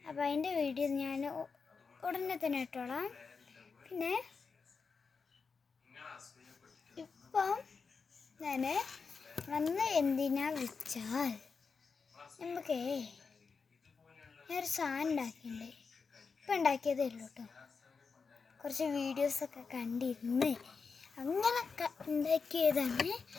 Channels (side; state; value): right; quieter; 5.1 dB